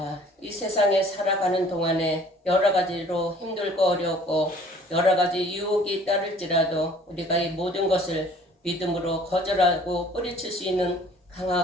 이 세상에 살아가는 동안에 여러 가지로 힘들고 어렵고 여러 가지 유혹이 따를지라도 우리가 이 모든 것을 믿음으로 거절하고 뿌리칠 수 있는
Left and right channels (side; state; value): both; normal; correlation 0.53